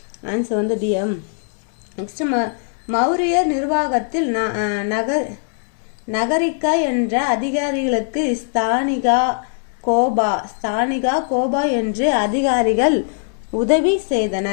ஆன்சர் வந்து டிஎம். நெக்ஸ்ட், மௌரியர் நிர்வாகத்தில் நகரிகா என்ற அதிகாரிகளுக்கு ஸ்தானிகா கோபா என்று அதிகாரிகள் உதவி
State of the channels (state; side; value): silent; right; digital silence